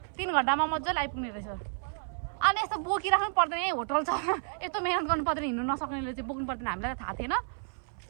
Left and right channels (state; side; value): silent; left; 57 dB below the other